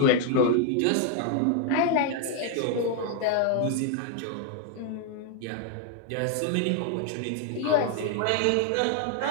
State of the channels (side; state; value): both; different; correlation 0.00